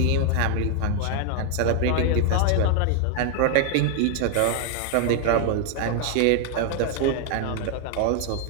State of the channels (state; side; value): different; both; correlation 0.00